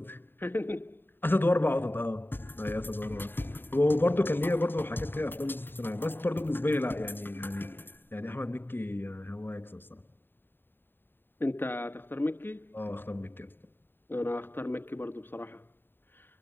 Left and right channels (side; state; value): right; late; 0.098 ms